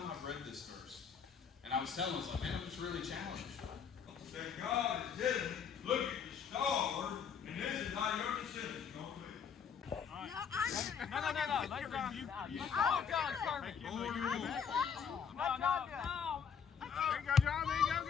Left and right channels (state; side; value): quieter; right; 6.9 dB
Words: I've read this verse. And I was telling him, I was like, man, I'm just really challenged. That God is telling you, look at the star, and this is how your decision is going to be. No. Let God. Oh, God, perfect. No. There you go, John. There you